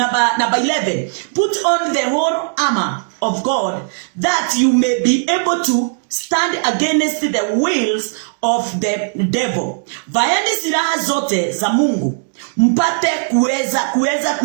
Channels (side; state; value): left; silent; digital silence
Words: put on the whole armor of God that you may be able to stand against the wills of the devil. Vaeni silaha zote za Mungu mpate kuweza